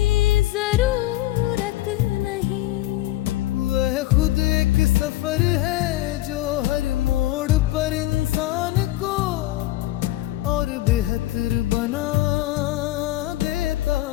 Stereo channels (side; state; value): right; quieter; 16.2 dB